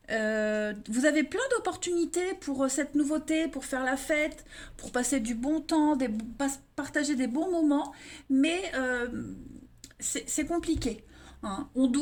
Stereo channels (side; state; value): both; identical; correlation 1.00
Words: Vous avez plein d'opportunités pour cette nouveauté, pour faire la fête, pour passer du bon temps, partager des bons moments, mais c'est compliqué. Hein. On